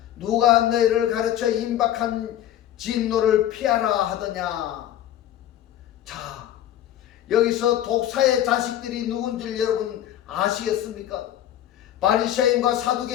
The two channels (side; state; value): right; quieter; 11.8 dB